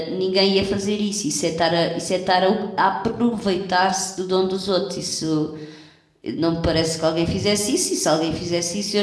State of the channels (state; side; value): identical; both; correlation 1.00